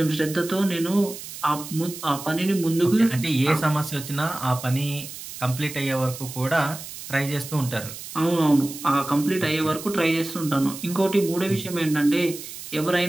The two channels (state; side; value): noise; right; hiss, 12 dB below the sound